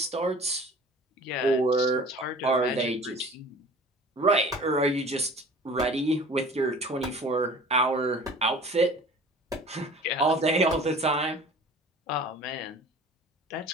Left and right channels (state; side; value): normal; both; correlation 0.44